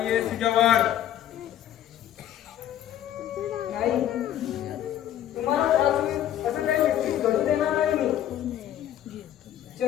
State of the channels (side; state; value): right; quieter; 11.4 dB